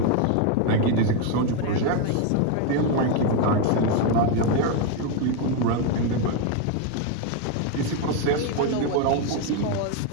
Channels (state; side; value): different; both; correlation 0.01